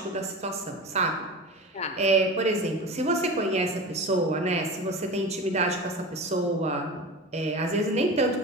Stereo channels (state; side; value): normal; both; correlation 0.30